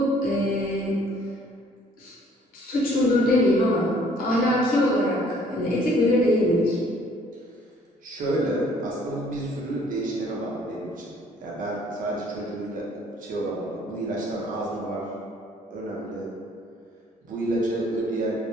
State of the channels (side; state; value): both; normal; correlation 0.59